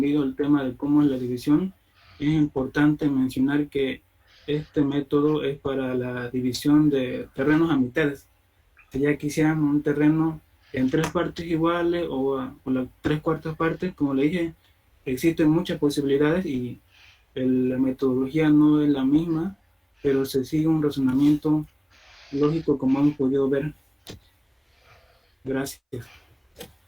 el tema de cómo es la división. Es importante mencionar que este método es para la división de terrenos a mitades. Si ya quisieran un terreno en 3 partes iguales o las 3/4 partes, como le dije, existen muchas posibilidades y la metodología no es la misma, pero se sigue un razonamiento lógico, como hemos podido ver. Gracias.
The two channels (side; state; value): both; identical; correlation 1.00